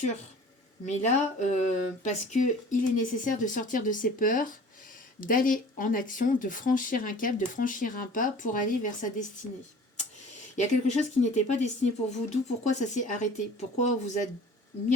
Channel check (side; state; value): both; normal; correlation 0.45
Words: Mais là, parce qu'il est nécessaire de sortir de ses peurs, d'aller en action, de franchir un cap, de franchir un pas pour aller vers sa destinée. Il y a quelque chose qui n'était pas destiné pour vous, d'où pourquoi ça s'est arrêté, pourquoi vous a